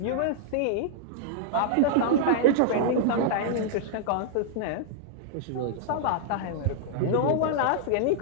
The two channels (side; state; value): both; different; correlation -0.01